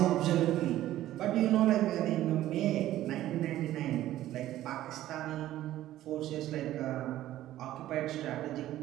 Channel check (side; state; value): left; quieter; 14.0 dB